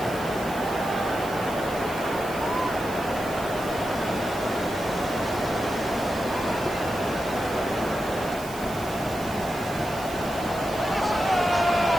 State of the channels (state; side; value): noise; right; hiss, 15 dB below the sound